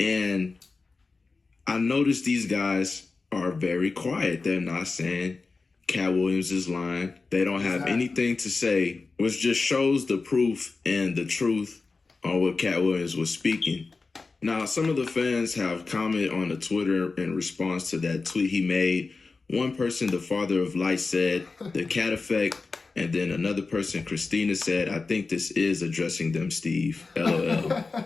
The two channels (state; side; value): quieter; right; 4.1 dB